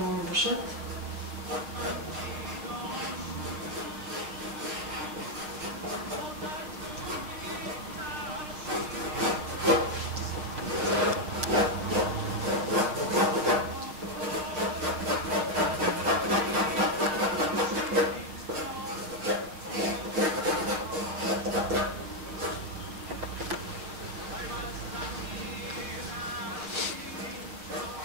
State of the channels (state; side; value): late; left; 6.5 ms